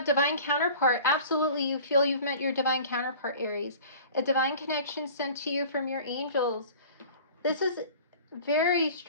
divine counterpart. Absolutely, you feel you've met your divine counterpart, Aries. A divine connection sent to you from your angels. This is a very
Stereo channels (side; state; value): both; inverted; correlation -0.43